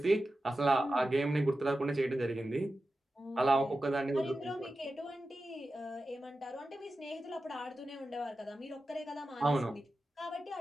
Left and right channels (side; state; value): both; normal; correlation 0.93